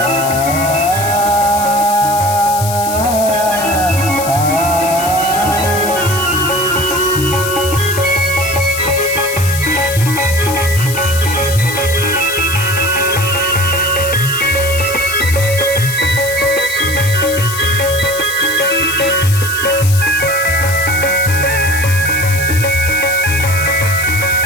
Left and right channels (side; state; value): left; noise; hiss, 7 dB below the sound